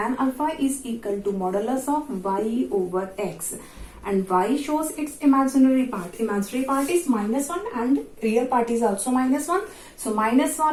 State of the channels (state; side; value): identical; both; correlation 1.00